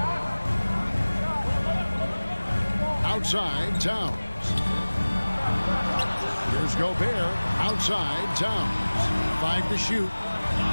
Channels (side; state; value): both; inverted; correlation -1.00